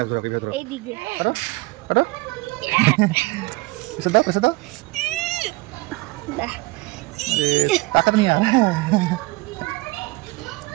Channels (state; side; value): quieter; left; 22.2 dB